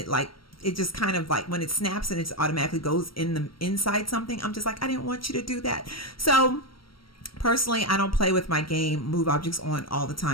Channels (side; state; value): right; late; 0.74 ms